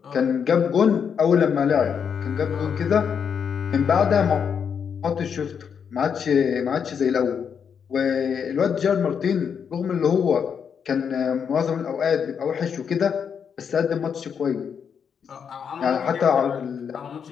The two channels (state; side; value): quieter; right; 7.1 dB